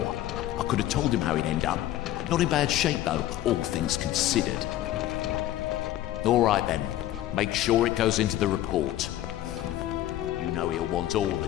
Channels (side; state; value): right; quieter; 13.6 dB